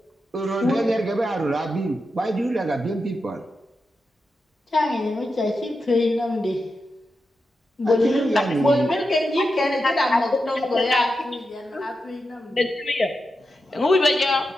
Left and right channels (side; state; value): both; normal; correlation 0.88